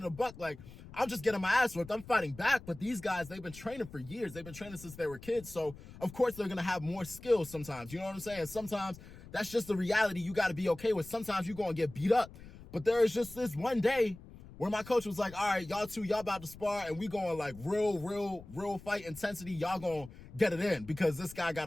a buck. Like, I'm just getting my ass whipped. I'm fighting back. But these guys, they've been training for years. They've been training since they were kids. So, of course, they're gonna have more skills sometimes. You know what I'm saying? Sometimes that's just the reality you gotta be okay with. Sometimes you're gonna get beat up. But there is just this one day where my coach was like, all right, y'all about to spar, and we going like real fight intensity. Y'all gonna get it in because this guy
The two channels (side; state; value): left; noise; rumble, 17 dB below the sound